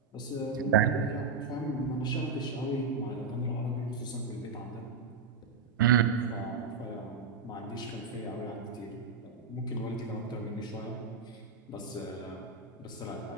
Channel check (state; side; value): quieter; left; 4.9 dB